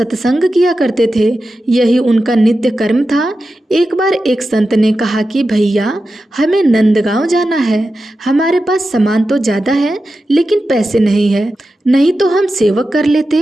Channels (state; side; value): normal; both; correlation 0.92